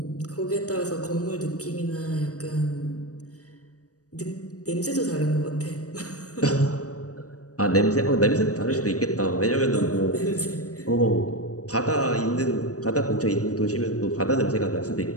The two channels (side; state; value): right; late; 0.66 ms